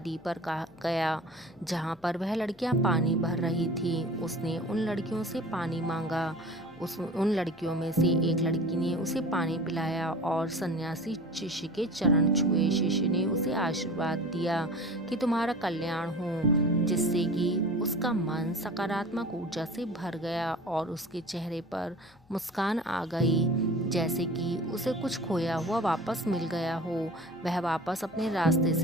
पर गया जहाँ पर वह लड़कियाँ पानी भर रही थी। उसने उन लड़कियों से पानी मांगा। उन लड़कियों में से एक लड़की ने उसे पानी पिलाया और सन्यासी शिष्य के चरण छुए। शिष्य ने उसे आशीर्वाद दिया कि तुम्हारा कल्याण हो, जिससे कि उसका मन सकारात्मक ऊर्जा से भर गया और उसके चेहरे पर मुस्कान आ गई, जैसे कि उसे कुछ खोया हुआ वापस मिल गया हो। वह वापस अपने रास्ते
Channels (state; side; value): noise; left; hum, 29 dB below the sound